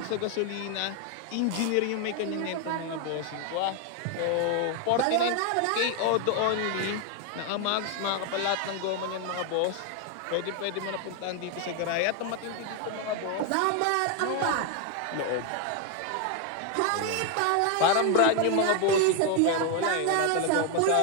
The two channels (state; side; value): different; both; correlation 0.01